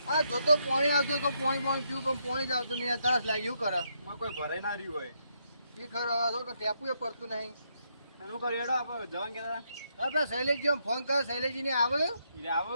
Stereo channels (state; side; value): inverted; both; correlation -0.77